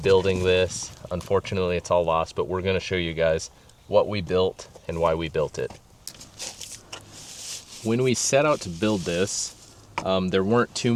this. Unfortunately, it's all lost, but we're going to show you guys what we built and why we built it. When we set out to build this, there weren't too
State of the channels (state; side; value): identical; both; correlation 1.00